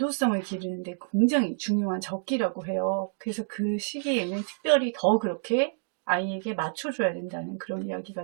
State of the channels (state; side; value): silent; left; digital silence